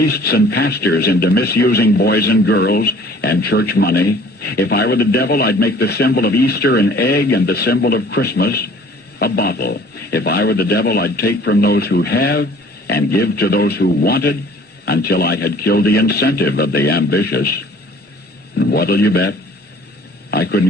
and pastors into misusing boys and girls and church money. If I were the devil, I'd make the symbol of Easter an egg and the symbol of Christmas a bottle. If I were the devil, I'd take from those who have and give to those who wanted until I had killed the incentive of the ambitious. And what'll you bet? I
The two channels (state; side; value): normal; both; correlation 0.52